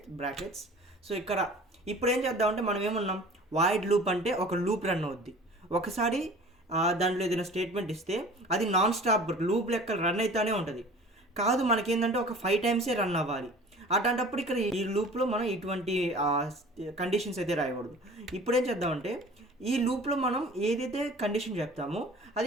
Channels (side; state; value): both; normal; correlation 0.44